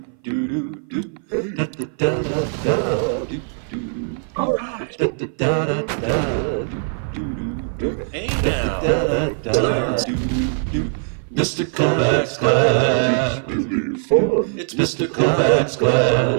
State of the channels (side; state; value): left; silent; 58 dB below the other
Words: do do do. Da da da da da do do. All right. Da da da da da do do do. Hey now. Da da da do do. Mr. Kovacs class. It's Mr. Kovacs